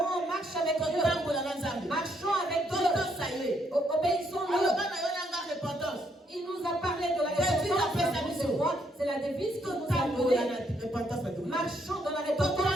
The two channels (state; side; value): normal; both; correlation 0.73